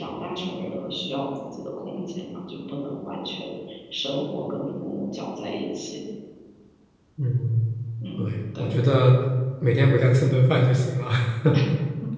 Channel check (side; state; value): both; identical; correlation 1.00